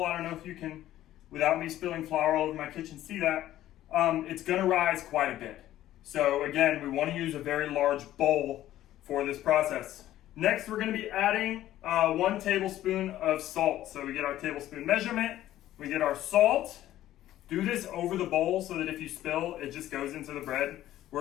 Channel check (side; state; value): right; quieter; 13.5 dB